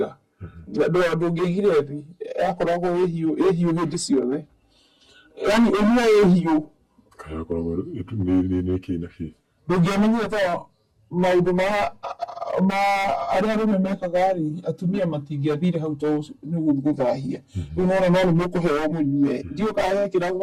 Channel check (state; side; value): identical; both; correlation 1.00